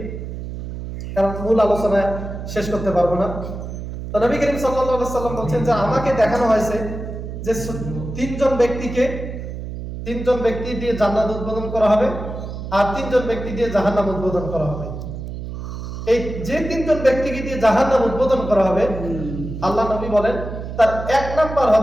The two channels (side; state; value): right; noise; hum, 8 dB below the sound